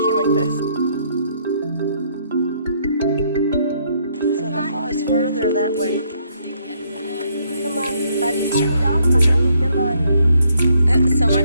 like this. So the fall is further that way. Come on, buddy's chewed off. So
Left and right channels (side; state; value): both; inverted; correlation -0.71